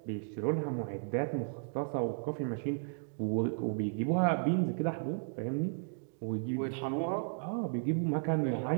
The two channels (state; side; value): silent; left; digital silence